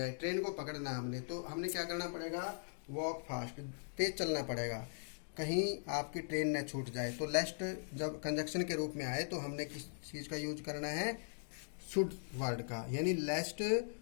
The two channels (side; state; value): right; silent; digital silence